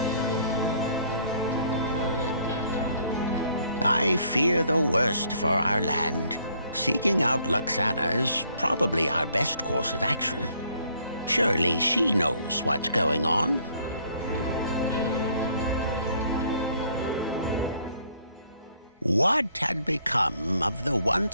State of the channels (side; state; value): both; inverted; correlation -0.64